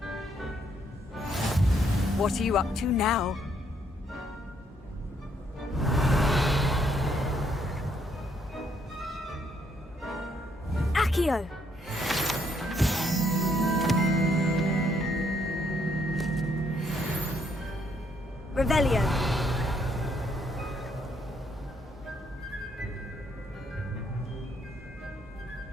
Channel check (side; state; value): both; normal; correlation 0.71